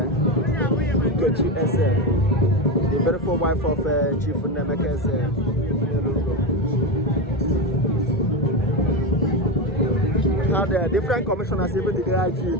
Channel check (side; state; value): both; normal; correlation 0.15